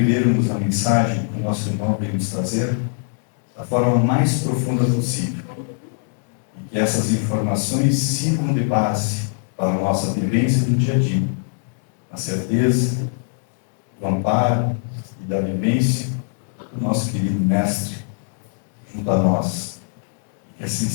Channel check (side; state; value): right; silent; digital silence